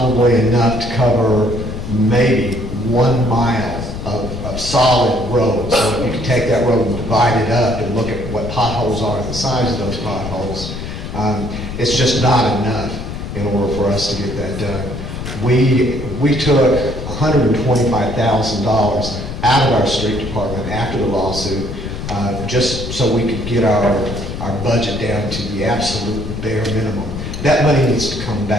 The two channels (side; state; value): left; noise; rumble, 7 dB below the sound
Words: enough to cover maybe 1 mile of solid road. So if you can take that road and divide it up and look at what potholes are and the size of those potholes, it's just not enough in order for us to get that done. We took $125,000 out of our street department after the lawsuit, just so we could get our budget down to the absolute bare minimum. That money needs to come